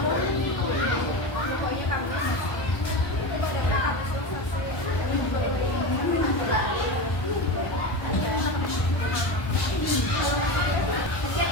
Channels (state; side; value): late; right; 1.1 ms